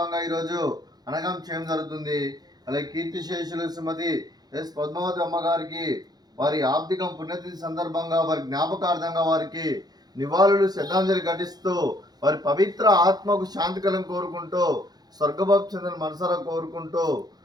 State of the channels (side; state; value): left; late; 0.19 ms